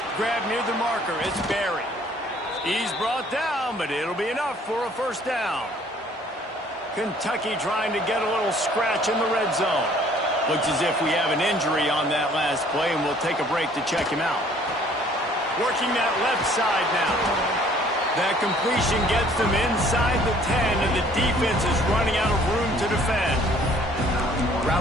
Grab near the marker. It's Barry. He's brought down, but it'll be enough for a first down. Kentucky trying to get a little scratch in the red zone. Looks as if we have an injury on that last play, and we'll take a break to check him out. Working that left side now. That completion gets them inside the 10, and the defense is running out of room to defend.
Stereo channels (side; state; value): both; normal; correlation 0.57